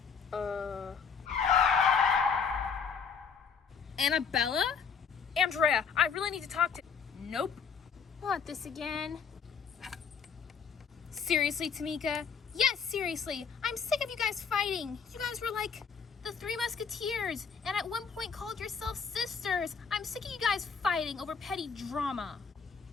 Annabella? Andrea, I really need to talk to... Nope. What, this again? Seriously, Tamika? Yes, seriously. I'm sick of you guys fighting. You guys were like the Three Musketeers, and at one point called yourselves sisters. I'm sick of you guys fighting over petty drama.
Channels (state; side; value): quieter; right; 6.2 dB